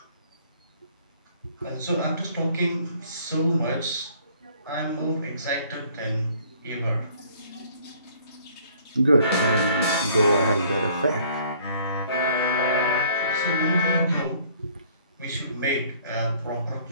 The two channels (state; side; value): inverted; both; correlation -0.58